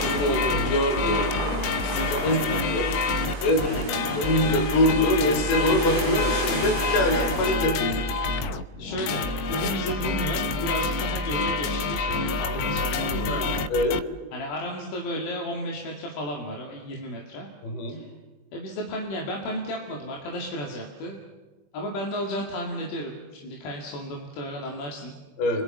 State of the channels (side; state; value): right; late; 20 ms